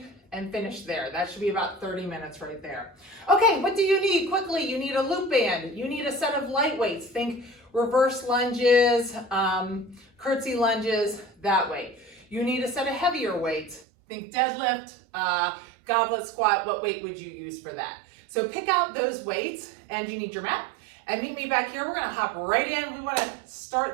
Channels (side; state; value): left; drops out; at 13.9 s